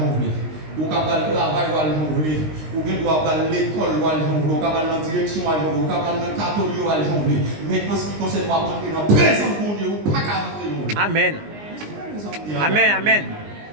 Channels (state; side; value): late; left; 19 ms